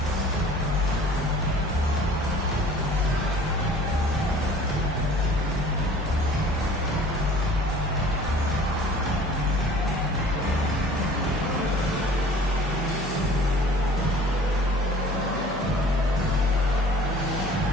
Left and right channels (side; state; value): both; normal; correlation 0.48